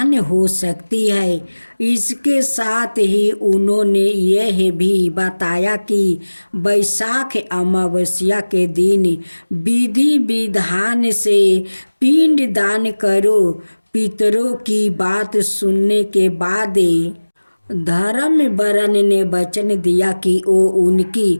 हो सकती है। इसके साथ ही उन्होंने यह भी बताया कि वैशाख अमावस्या के दिन विधि विधान से पिंड दान करो। पितरों की बात सुनने के बाद धर्म वर्ण ने वचन दिया कि वो उनकी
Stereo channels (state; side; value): inverted; both; correlation -1.00